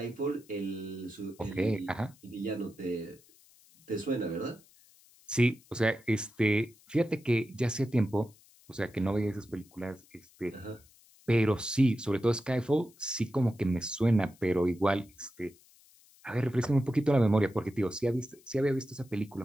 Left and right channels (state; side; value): noise; left; hiss, 28 dB below the sound